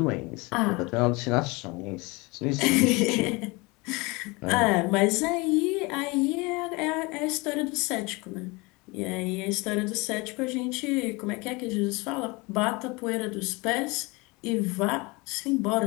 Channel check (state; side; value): quieter; right; 25.7 dB